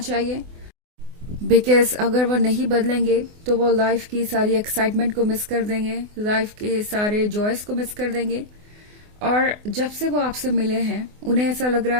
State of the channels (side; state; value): left; late; 24 ms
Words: चाहिए। बिकॉज अगर वो नहीं बदलेंगे तो वो लाइफ की सारी एक्साइटमेंट को मिस कर देंगे, लाइफ के सारे जॉयस को मिस कर देंगे। और जब से वो आपसे मिले हैं उन्हें ऐसा लग रहा